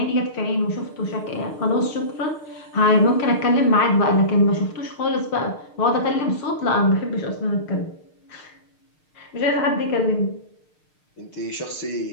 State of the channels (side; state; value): right; late; 6.6 ms